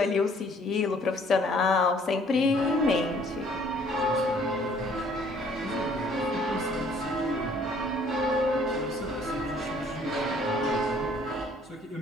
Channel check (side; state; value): both; normal; correlation 0.59